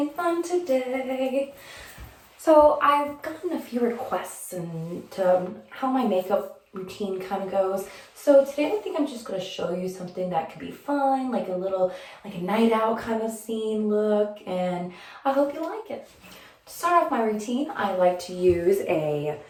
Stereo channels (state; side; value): identical; both; correlation 1.00